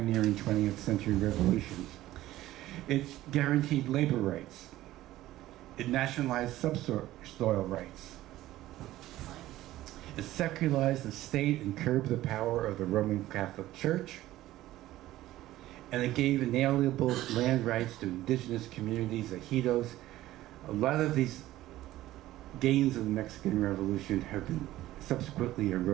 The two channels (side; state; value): left; quieter; 15.3 dB